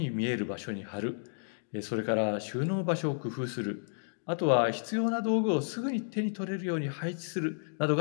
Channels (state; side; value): silent; right; digital silence